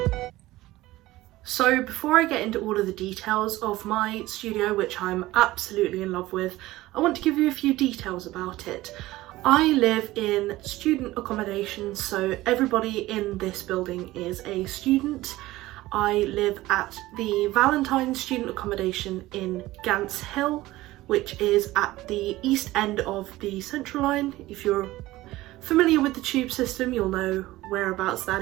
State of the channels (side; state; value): left; quieter; 17.5 dB